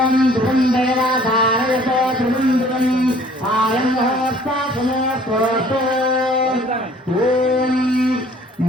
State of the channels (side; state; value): both; normal; correlation 0.54